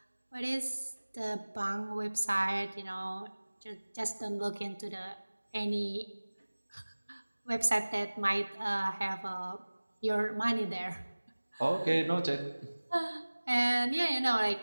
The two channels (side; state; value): both; inverted; correlation -1.00